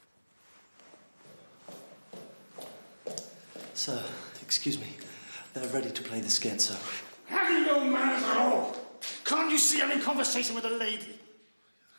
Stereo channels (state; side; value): inverted; both; correlation -1.00